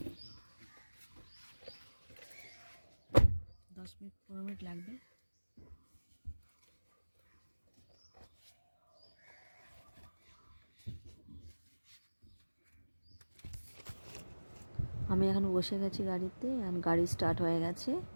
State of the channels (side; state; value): both; inverted; correlation -1.00